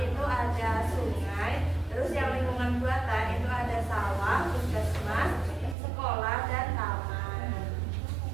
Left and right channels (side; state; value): left; drops out; at 5.8 s